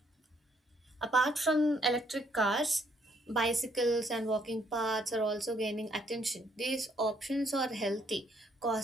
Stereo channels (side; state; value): both; normal; correlation 0.69